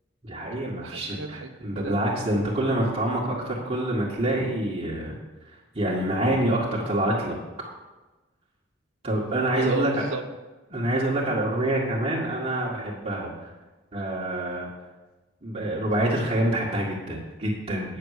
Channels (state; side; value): normal; both; correlation 0.42